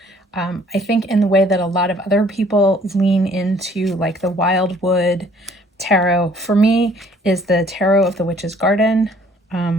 I think in the way that a lot of other people lean into like the Wildwood Tarot, for me is the Tarot of the Witch's Garden.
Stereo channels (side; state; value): both; normal; correlation 0.58